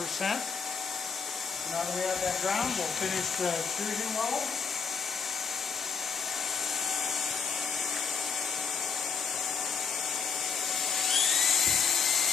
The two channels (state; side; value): quieter; right; 6.0 dB